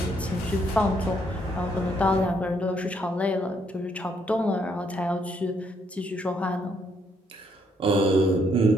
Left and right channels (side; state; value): both; normal; correlation 0.72